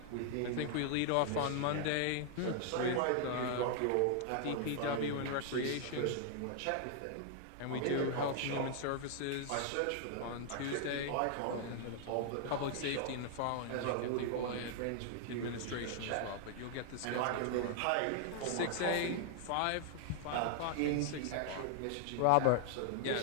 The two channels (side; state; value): both; different; correlation 0.00